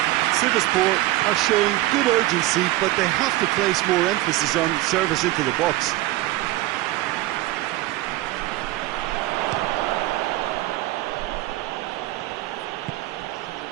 Sivaspor are showing good urgency, but they have to place more emphasis on service into the box.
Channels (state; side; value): quieter; left; 17.2 dB